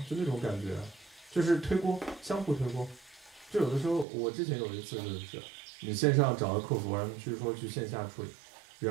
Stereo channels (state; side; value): drops out; left; at 4.0 s